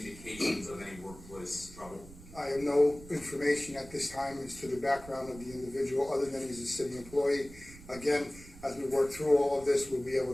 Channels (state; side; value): noise; right; rumble, 18 dB below the sound